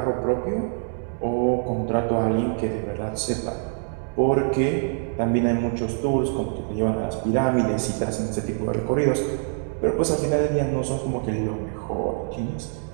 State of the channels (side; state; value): left; silent; 62 dB below the other